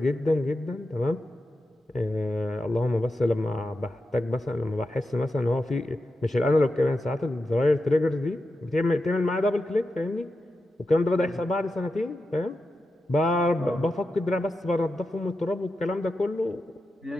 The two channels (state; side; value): normal; both; correlation 0.90